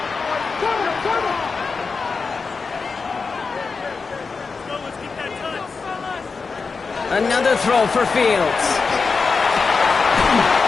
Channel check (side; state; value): right; quieter; 4.7 dB